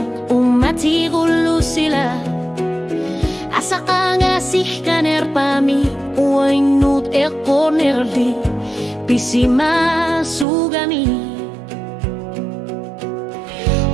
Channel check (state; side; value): drops out; left; at 10.5 s